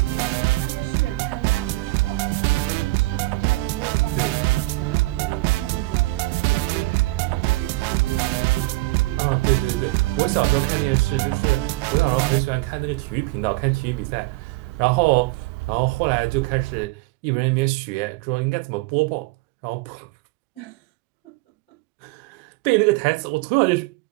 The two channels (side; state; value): left; quieter; 21.1 dB